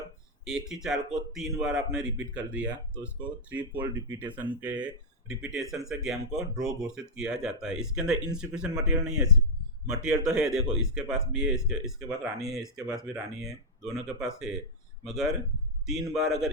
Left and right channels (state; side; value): normal; both; correlation -0.04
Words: एक ही चाल को 3 बार आपने रिपीट कर दिया, तो उसको 3 फोल्ड रिपीटेशन से गेम को ड्रॉ घोषित किया जाता है। इसके अंदर इनसिफिशिएंट मटेरियल नहीं है। मटेरियल तो है, देखो इसके पास भी है, इसके पास रानी है, इसके पास भी रानी है, दोनों के पास है। मगर 3 बार अगर